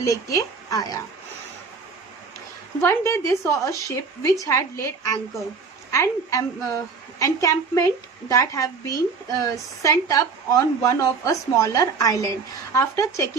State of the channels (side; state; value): left; quieter; 4.9 dB